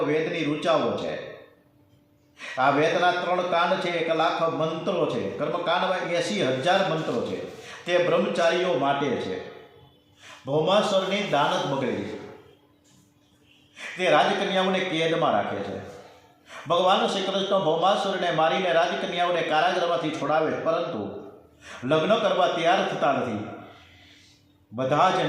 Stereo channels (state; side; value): identical; both; correlation 1.00